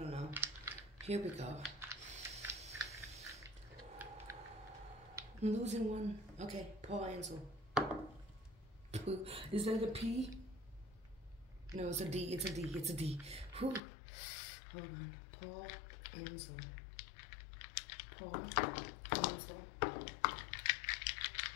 know. Here we go. I'm losing one. Okay, Paul Ansel. Is that a P? No, it's a D. It's a D. It's a D. Whew. Hold on. Paul Ansel. Paul Ansel.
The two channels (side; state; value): right; drops out; at 13.8 s